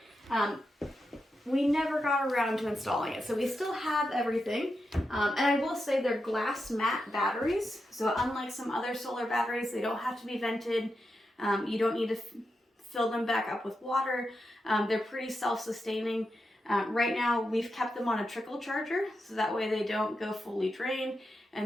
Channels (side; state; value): both; normal; correlation 0.88